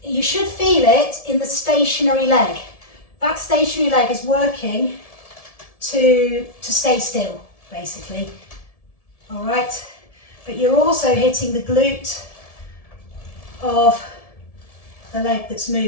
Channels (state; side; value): late; right; 1.7 ms